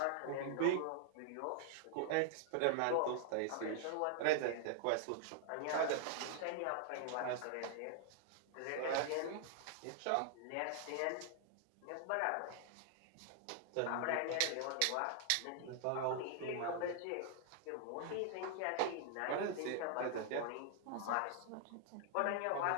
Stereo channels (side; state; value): both; different; correlation -0.01